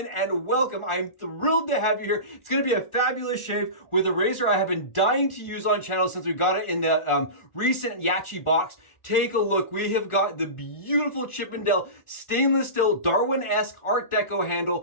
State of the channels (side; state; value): right; late; 1.4 ms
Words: and welcome. I'm thrilled to have you here. It's going to be a fabulous shave with a razor I have been dying to use on channel since we got it in the recent Yaqi box. Take a look. We have got the beautiful Chippendale stainless steel Darwin-esque Art Deco